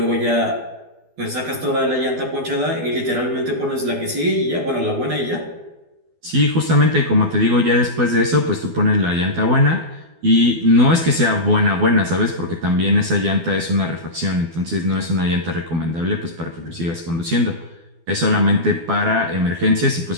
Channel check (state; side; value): late; left; 12 ms